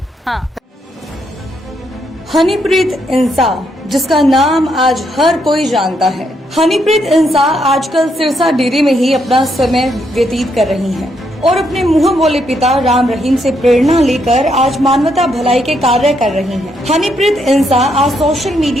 हाँ, हनीप्रीत इंसा, जिसका नाम आज हर कोई जानता है। हनीप्रीत इंसा आजकल सिरसा डेरे में ही अपना समय व्यतीत कर रही हैं और अपने मुंह बोले पिता राम रहीम से प्रेरणा लेकर आज मानवता भलाई के कार्य कर रही हैं। हनीप्रीत इंसा आज सोशल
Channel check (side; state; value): both; normal; correlation 0.76